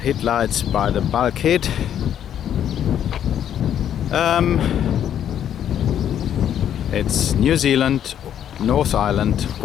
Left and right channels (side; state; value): right; quieter; 9.9 dB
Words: headlights by the bulkhead. It's New Zealand, North Island,